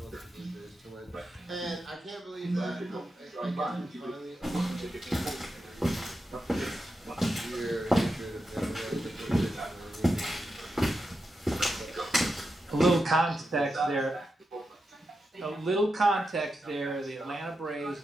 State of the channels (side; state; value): both; normal; correlation 0.88